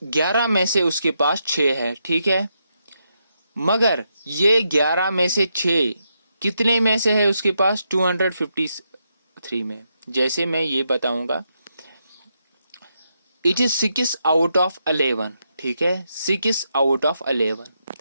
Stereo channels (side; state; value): both; inverted; correlation -0.82